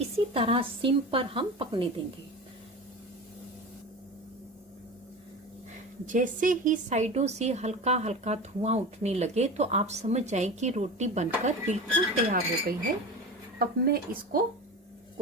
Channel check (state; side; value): normal; both; correlation 0.30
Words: इसी तरह सिम पर हम पकने देंगे। जैसे ही साइडों से हल्का हल्का धुआं उठने लगे तो आप समझ जाएं कि रोटी बनकर बिल्कुल तैयार हो गई है। अब मैं इसको